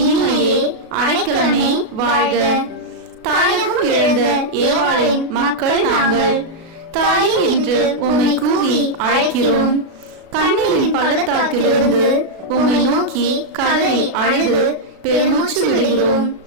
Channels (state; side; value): late; left; 36 ms